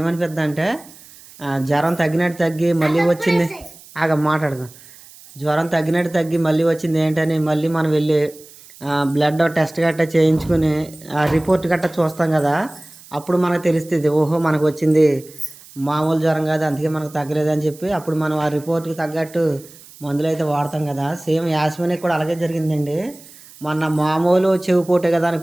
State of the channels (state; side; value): noise; right; hiss, 22 dB below the sound